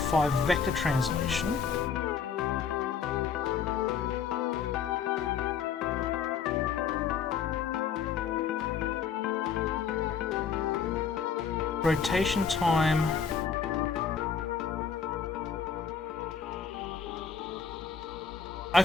vector translation. Rotation time.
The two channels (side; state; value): right; quieter; 6.4 dB